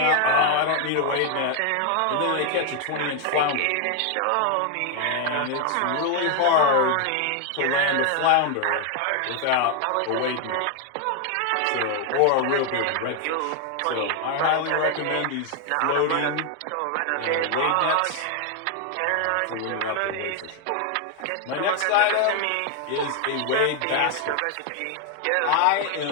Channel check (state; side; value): different; both; correlation 0.00